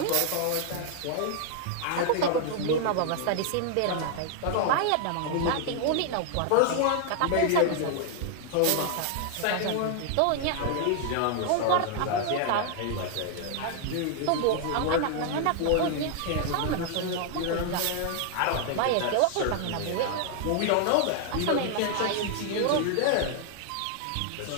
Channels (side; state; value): both; different; correlation 0.00